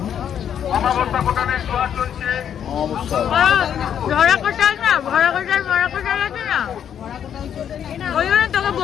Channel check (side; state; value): right; quieter; 9.0 dB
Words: অমাবস্যা কোটানের জোয়ার চলছে। ভরা কোটাল না, ভরা কোটাল আছে না, ওই জন্য তোকে